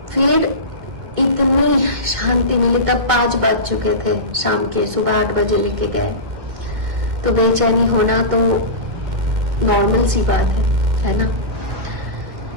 फिर इतनी शांति मिली, तब 5 बज चुके थे शाम के, सुबह 8 बजे लेके गए। तो बेचैनी होना तो नॉर्मल सी बात है ना।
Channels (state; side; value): late; left; 2.1 ms